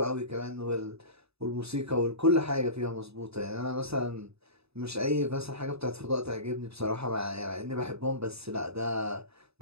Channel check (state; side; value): late; left; 0.78 ms